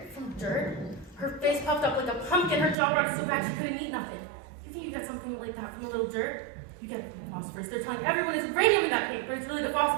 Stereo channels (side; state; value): left; drops out; at 2.8 s